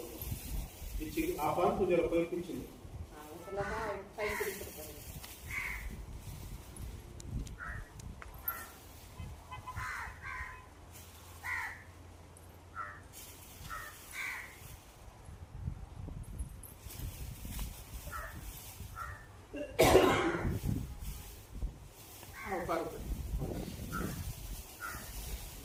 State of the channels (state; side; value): identical; both; correlation 1.00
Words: आपण तुझ्या पैसे